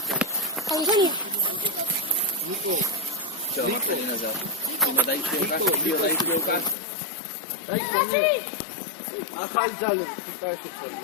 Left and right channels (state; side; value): drops out; right; at 6.8 s